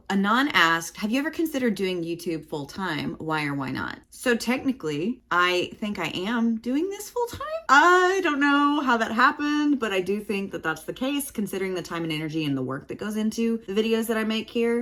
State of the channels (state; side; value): identical; both; correlation 1.00